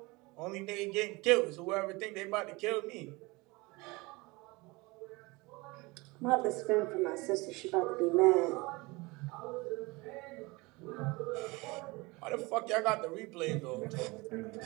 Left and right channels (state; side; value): quieter; left; 24.2 dB